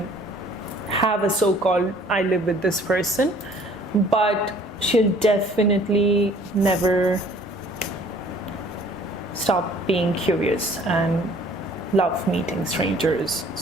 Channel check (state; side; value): normal; both; correlation 0.55